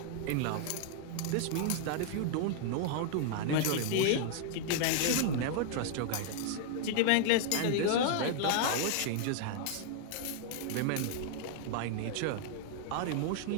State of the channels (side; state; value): both; different; correlation 0.00